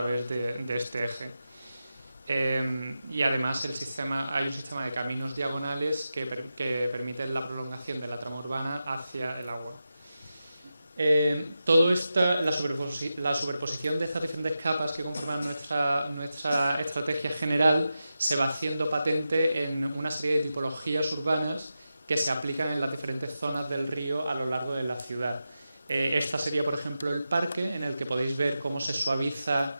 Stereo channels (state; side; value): inverted; both; correlation -0.91